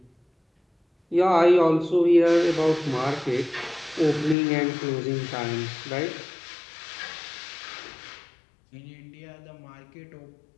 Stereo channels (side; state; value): right; drops out; at 4.4 s